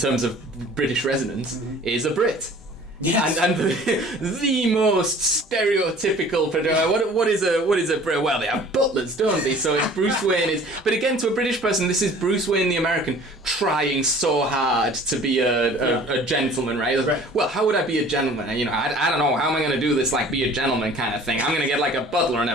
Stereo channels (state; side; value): normal; both; correlation 0.48